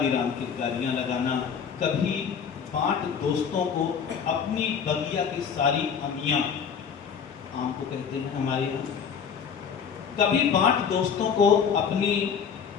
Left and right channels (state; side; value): quieter; right; 7.0 dB